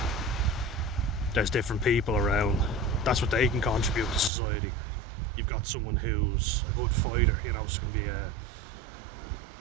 there's different people around. That's what they can contribute to society. You've got someone who's a good fighter, you know, so can be a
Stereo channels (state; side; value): drops out; left; at 4.3 s